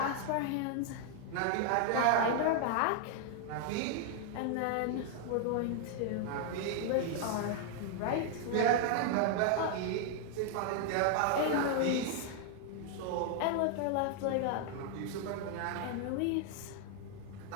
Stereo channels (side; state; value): both; different; correlation 0.00